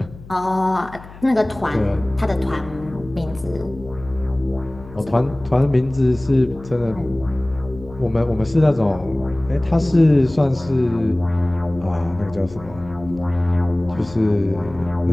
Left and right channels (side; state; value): left; noise; hum, 18 dB below the sound